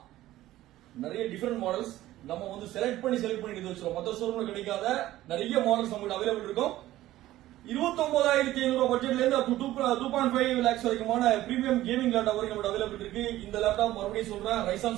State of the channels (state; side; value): quieter; left; 15.1 dB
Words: நிறைய டிஃபரெண்ட் மாடல்ஸ் நம்ம வந்து செலக்ட் பண்ணி எடுத்து வச்சிருக்கோம். மற்ற ஷோரூம்ல கிடைக்காத நிறைய மாடல்ஸ் நம்மகிட்ட அவைலபிள் இருக்கும். 29500 பட்ஜெட்ல இருந்து அப் டு 2.5 lakhs வரைக்குமான பிரீமியம் கேமிங் லேப்டாப் வரைக்கும் நம்மகிட்ட அவைலபிள் இருக்கு. இந்த லேப்டாப் மறுபடியும் சொல்றேன், Ryzen